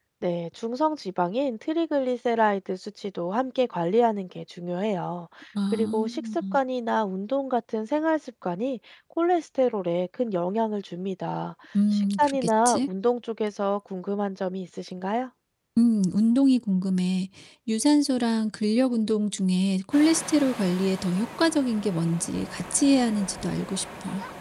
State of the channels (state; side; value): identical; both; correlation 1.00